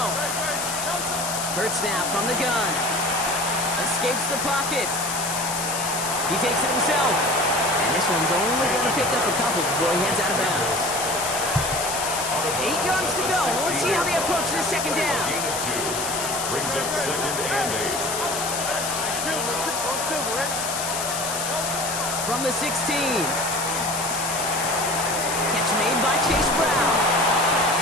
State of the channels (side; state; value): left; noise; hiss, 3 dB below the sound